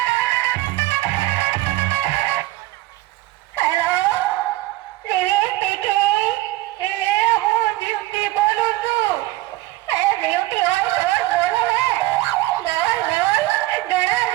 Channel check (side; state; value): left; quieter; 18.2 dB